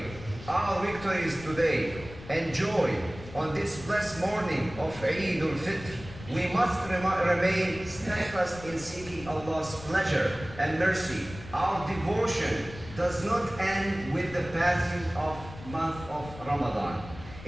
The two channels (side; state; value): left; noise; rumble, 15 dB below the sound